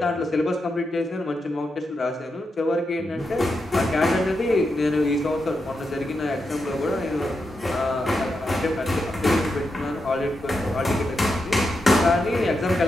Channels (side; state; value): both; normal; correlation 0.86